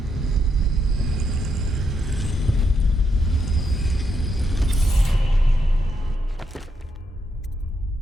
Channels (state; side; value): normal; both; correlation 0.79